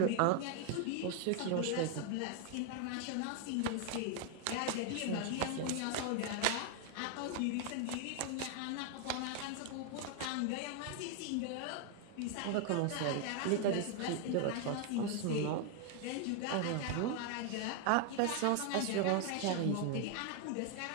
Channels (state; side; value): different; both; correlation 0.00